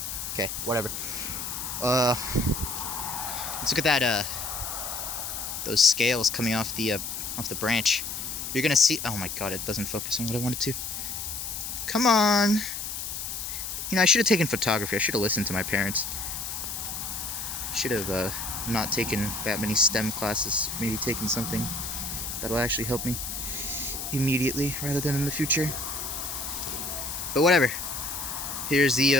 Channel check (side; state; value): left; noise; hiss, 5 dB below the sound